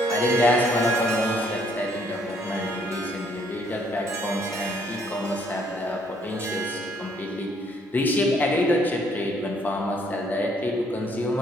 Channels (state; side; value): normal; both; correlation 0.66